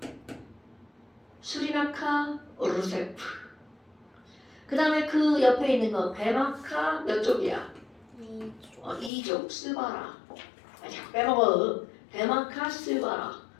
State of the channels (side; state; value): right; drops out; at 9.1 s